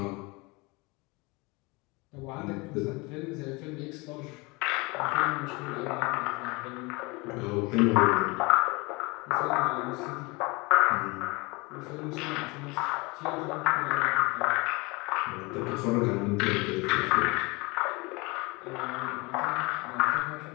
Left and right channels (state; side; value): quieter; right; 25.8 dB